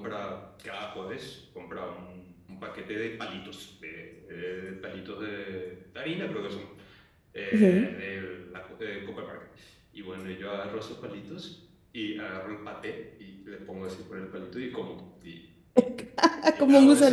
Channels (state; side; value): identical; both; correlation 1.00